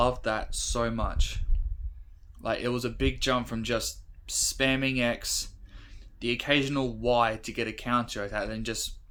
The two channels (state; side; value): identical; both; correlation 1.00